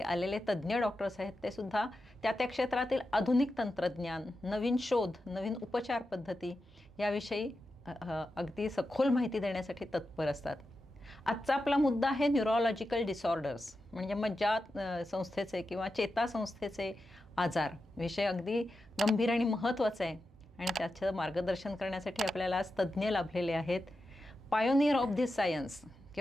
आलेले तज्ज्ञ डॉक्टर्स आहेत ते सुद्धा त्या त्या क्षेत्रातील आधुनिक तंत्रज्ञान, नवीन शोध, नवीन उपचार पद्धती याविषयी अगदी सखोल माहिती देण्यासाठी तत्पर असतात. आजचा आपला मुद्दा आहे न्यूरोलॉजिकल डिसऑर्डर्स म्हणजे मज्जा संस्थेचे किंवा चेतासंस्थेचे आजार. विषय अगदी गंभीर आणि महत्त्वाचा आहे आणि त्याचं मार्गदर्शन करण्यासाठी आपल्याला आज तज्ज्ञ लाभलेले आहेत. पायोनियर ऑफ दिस सायन्स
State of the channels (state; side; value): normal; both; correlation 0.90